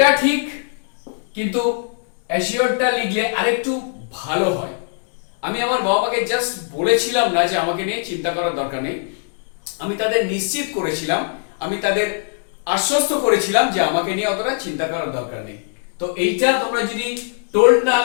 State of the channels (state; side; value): silent; right; digital silence